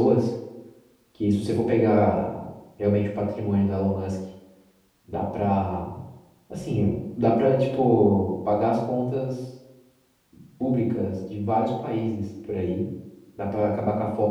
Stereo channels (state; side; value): identical; both; correlation 1.00